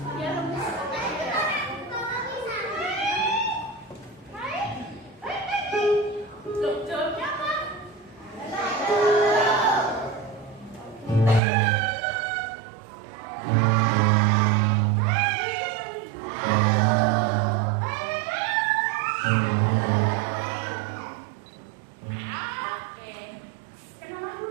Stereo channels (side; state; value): left; drops out; at 11.4 s